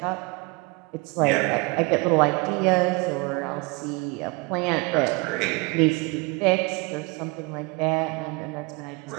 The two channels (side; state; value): left; quieter; 27.6 dB